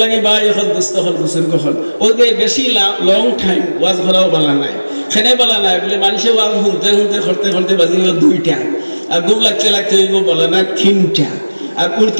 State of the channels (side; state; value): both; inverted; correlation -1.00